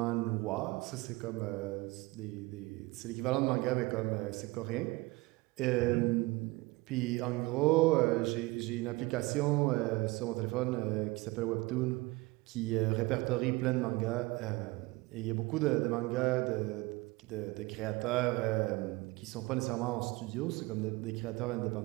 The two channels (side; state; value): left; quieter; 22.5 dB